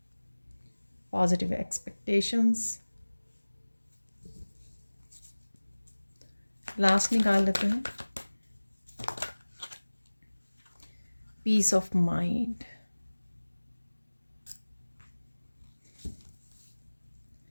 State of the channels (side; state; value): both; inverted; correlation -1.00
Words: positive expectations. Last निकाल लेते हैं, पीस ऑफ माइंड।